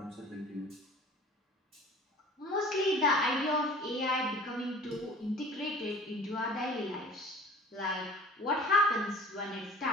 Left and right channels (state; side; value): normal; both; correlation 0.45